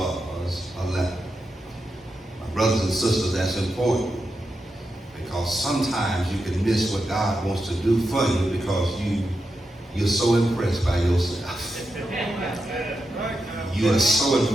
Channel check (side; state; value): both; normal; correlation 0.87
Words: a leper. My brothers and sisters, that's important, because sometimes you can miss what God wants to do for you because you're so impressed by yourself. You are so